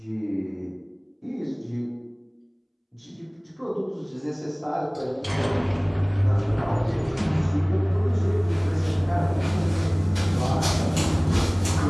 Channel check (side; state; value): both; identical; correlation 1.00